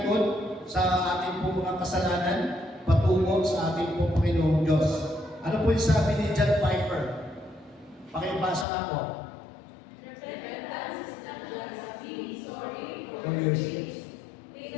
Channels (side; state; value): right; drops out; at 8.7 s